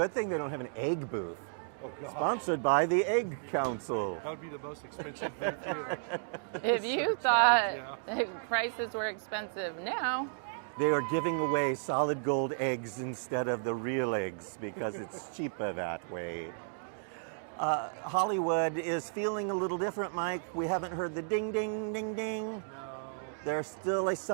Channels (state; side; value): silent; left; digital silence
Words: thing they don't have an egg booth. Oh, God. Sponsored by the Egg Council. That would be the most expensive booth here. If you thought prices were expensive, no. They are giving away solid gold eggs instead of the real eggs because it's cheaper that way. Hollywood is feeling a little different, Mike. We haven't heard the ding, ding, ding, ding. No. There's still a